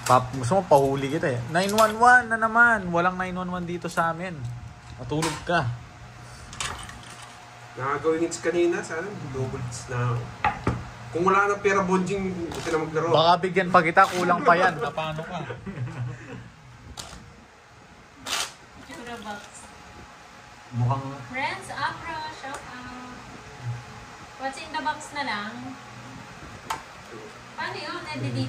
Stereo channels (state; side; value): identical; both; correlation 1.00